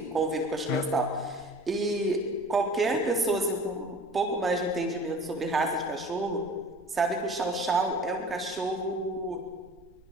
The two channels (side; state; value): right; noise; rumble, 26 dB below the sound